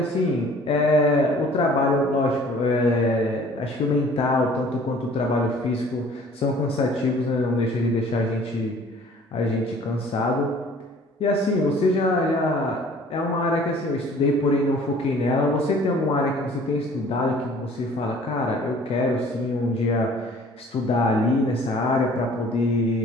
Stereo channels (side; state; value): both; normal; correlation 0.51